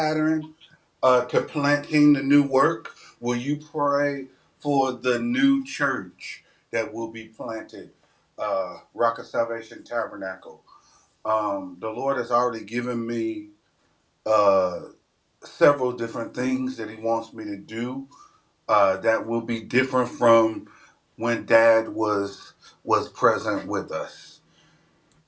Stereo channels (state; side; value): identical; both; correlation 1.00